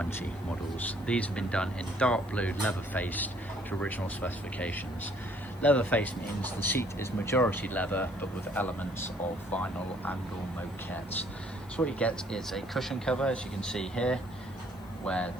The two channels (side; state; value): left; noise; hiss, 26 dB below the sound